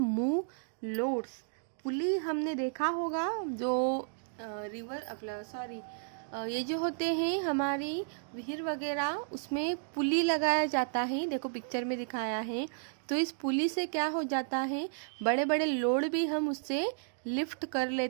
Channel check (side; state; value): left; silent; digital silence